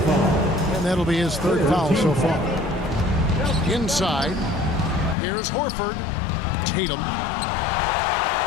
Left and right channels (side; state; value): right; drops out; at 5.2 s